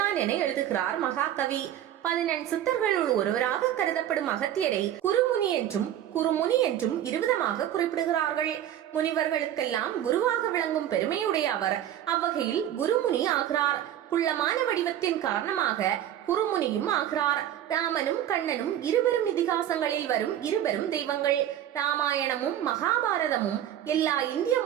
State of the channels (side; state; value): left; quieter; 11.3 dB